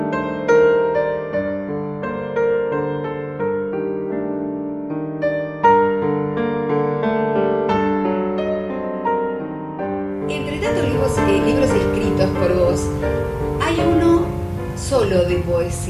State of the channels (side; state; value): both; identical; correlation 1.00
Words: Entre tantos libros escritos por vos, hay uno solo de